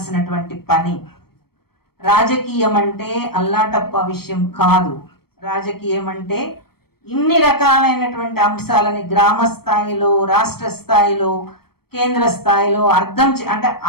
పని. రాజకీయం అంటే అల్లాటప్ప విషయం కాదు. రాజకీయం అంటే ఇన్ని రకాలైనటువంటి అంశాలని గ్రామ స్థాయిలో, రాష్ట్ర స్థాయిలో, కేంద్ర స్థాయిలో అంటే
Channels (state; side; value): late; right; 0.95 ms